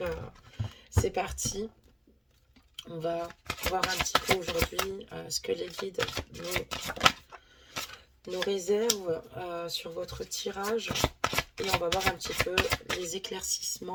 c'est parti. On va voir un petit peu aujourd'hui ce que les guides nous réservent sur votre tirage. Et on va voir un petit peu les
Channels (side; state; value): both; identical; correlation 1.00